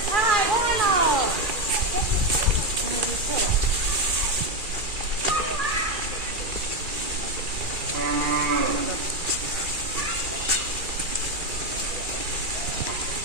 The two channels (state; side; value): late; left; 2.4 ms